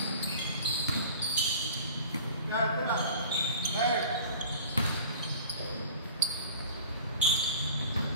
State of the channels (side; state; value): both; inverted; correlation -0.43